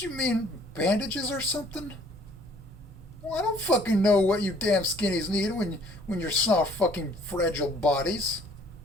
you mean bandages or something? Well, I don't fucking know what you damn skinnies need when you're soft fucking fragile bodies.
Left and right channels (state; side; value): normal; both; correlation 0.58